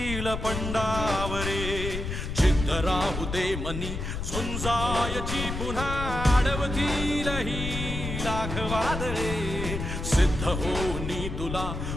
पंडावरे जिद्द राहू दे मनी झुंजायची पुन्हा अडवतील ही लाख वादळे सिद्ध होनी तुला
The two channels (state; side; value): noise; left; rumble, 5 dB below the sound